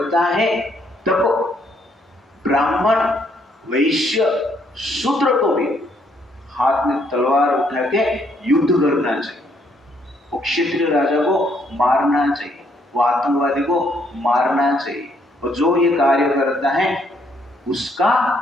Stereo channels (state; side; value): normal; both; correlation 0.70